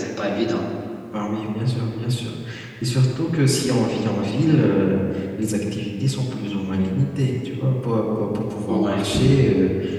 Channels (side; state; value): both; identical; correlation 1.00